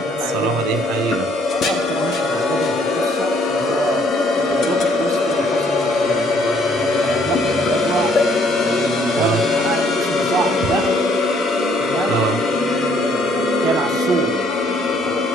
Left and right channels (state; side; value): normal; both; correlation 0.64